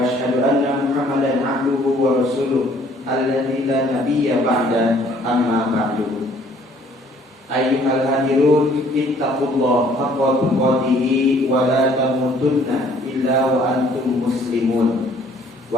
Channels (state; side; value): normal; both; correlation 0.59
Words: asyhadu anna Muhammadan 'abduhu wa rasuluh alladzi la nabiyya ba'da, amma ba'du. Ayyuhal hadirun, ittaqullaha haqqa tuqatih wa la tamutunna illa wa antum muslimun.